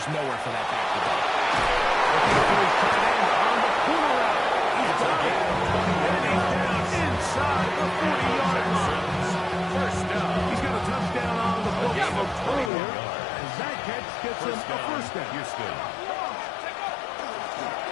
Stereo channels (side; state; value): right; drops out; at 12.7 s